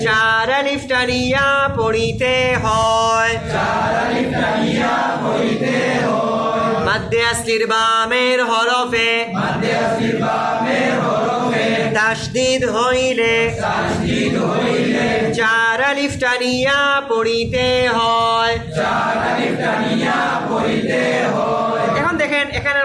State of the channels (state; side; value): identical; both; correlation 1.00